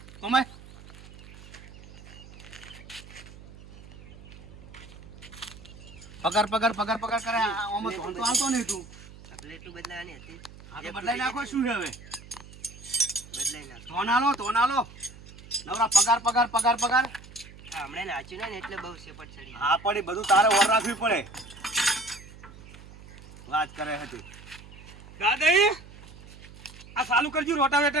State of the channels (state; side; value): noise; right; hum, 18 dB below the sound